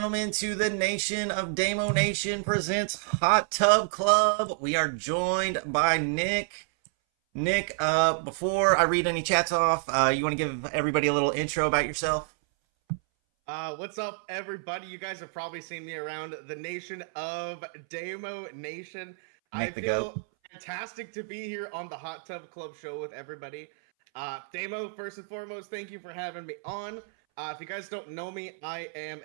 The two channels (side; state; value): left; silent; 58 dB below the other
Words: to the Nation of Damo Nation presents Hot Tub Club. We are joined by Nick. Nick, before I read any chats off, you want to give everybody a little intro about yourself? What's up, everybody? You guys have probably seen me around the Nation of Damo Nation. I feel fantastic to be here on the Hot Tub Club show with everybody. Damo, first and foremost, thank you for having me on. If you guys don't know me, I am